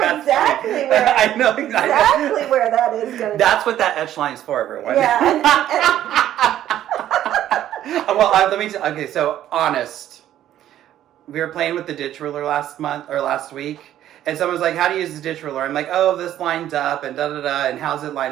exactly where. I know exactly where that is going to be. That's what that etch line is for, everyone. Yeah. Well, let me. Okay, so honest. We were playing with the ditch ruler last week, and someone was like, "How do you use the ditch ruler?" I'm like, "Oh, this lines up and da da da, and how's it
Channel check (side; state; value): left; quieter; 12.0 dB